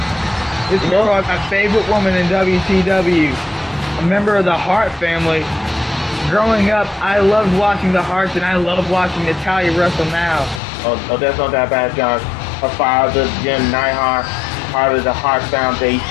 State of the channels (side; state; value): right; drops out; at 10.6 s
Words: This is probably my favorite woman in WTW. A member of the Hart family. Growing up, I loved watching the Harts, and I love watching Natalya wrestle now. Oh, that's not that bad, John. Her father, Jim Neidhart, part of the Hart